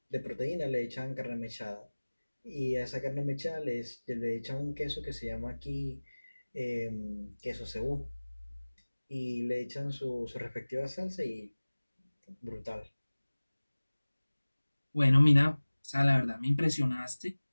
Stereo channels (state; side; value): inverted; both; correlation -1.00